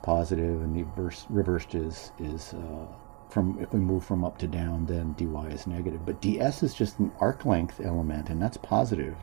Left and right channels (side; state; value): left; quieter; 32.0 dB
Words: and the reversed is if we move from up to down, then dy is negative. But ds is just an arc length element, and that's positive,